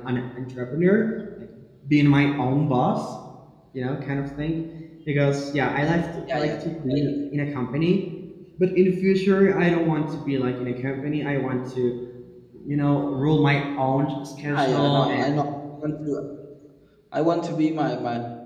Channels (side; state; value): both; identical; correlation 1.00